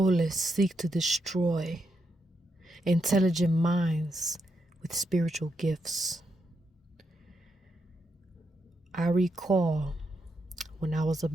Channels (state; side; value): normal; both; correlation 0.81